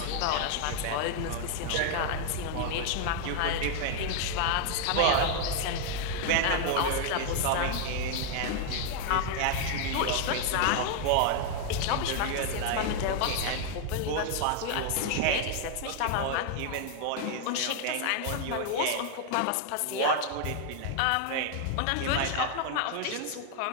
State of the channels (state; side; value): different; both; correlation 0.00